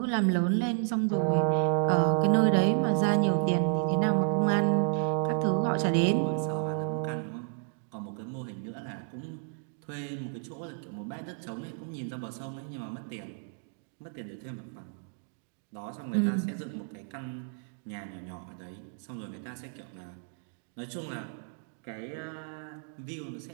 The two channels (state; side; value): silent; left; digital silence